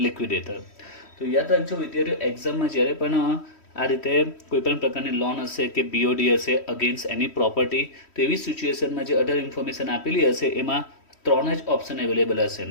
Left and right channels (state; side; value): late; right; 3.1 ms